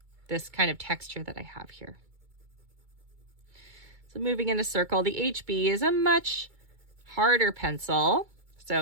this kind of texture that I have here. So moving in a circle, the HB is a much harder pencil,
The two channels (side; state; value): left; late; 2.2 ms